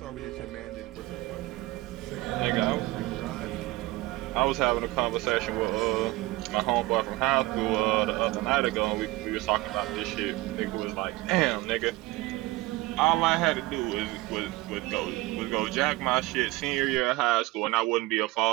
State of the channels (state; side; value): quieter; left; 19.8 dB